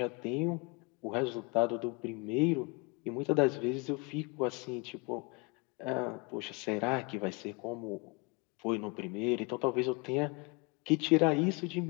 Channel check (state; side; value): quieter; right; 29.6 dB